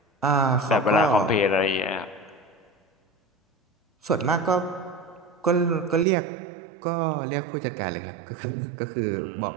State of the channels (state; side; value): drops out; left; at 6.1 s